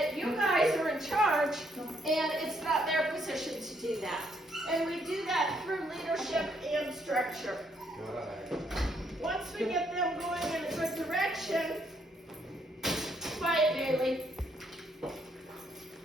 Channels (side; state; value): both; normal; correlation 0.72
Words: you guys are in charge, and it's not their position to do that. And we do that through leadership and structure. Once we get them going in a good direction, quiet, Bailey.